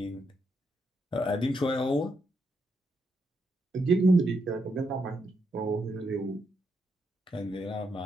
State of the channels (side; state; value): both; normal; correlation 0.80